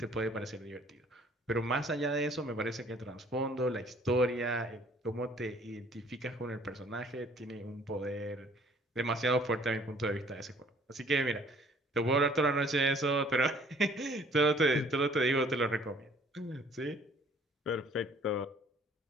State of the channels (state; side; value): normal; both; correlation 0.57